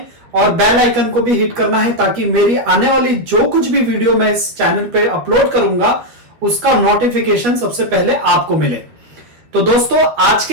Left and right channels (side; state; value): left; late; 12 ms